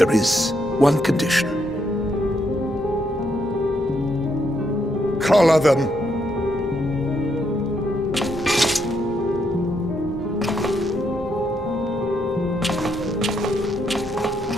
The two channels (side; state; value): both; normal; correlation 0.77